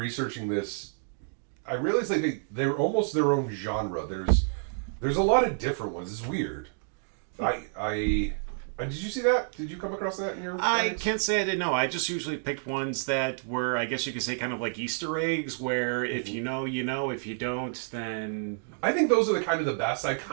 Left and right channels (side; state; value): left; silent; digital silence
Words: this, I realized like they're almost their own genre. There's a lot of different ones. It's weird. Did you see that? Did you come across that in your I guys? can't say I didn't know. I just usually picked ones that were, I guess you could say, kind of like Easter eggs, where if you know, you know. If you don't, then... I think those are the kind of the best. I